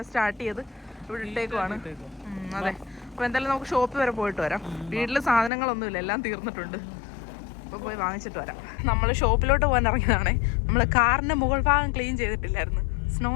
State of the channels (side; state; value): right; drops out; at 5.5 s